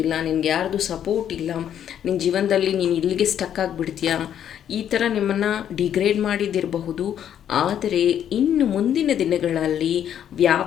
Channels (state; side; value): quieter; right; 9.7 dB